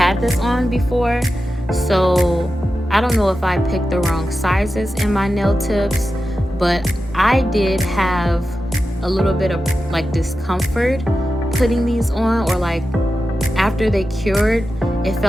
this on before, so I don't know if I picked the wrong sizes in my nail tips, but I did have a little bit of like discomfort putting these on, or like after they cured, it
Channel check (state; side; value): normal; both; correlation 0.92